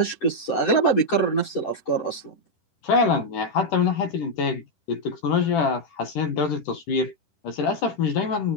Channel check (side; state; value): right; late; 10 ms